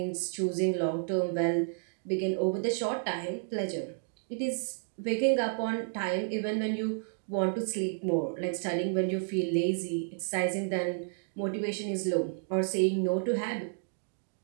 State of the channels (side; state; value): left; silent; digital silence